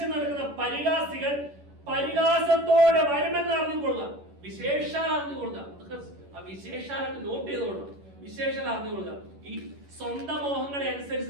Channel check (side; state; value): left; late; 11 ms